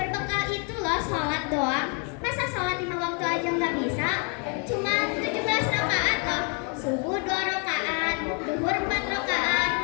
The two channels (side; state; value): right; quieter; 37.0 dB